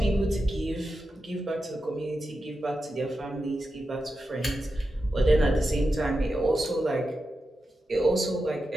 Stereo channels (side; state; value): both; normal; correlation 0.90